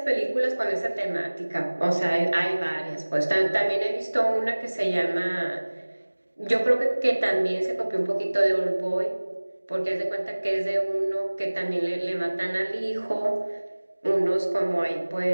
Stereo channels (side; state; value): both; inverted; correlation -1.00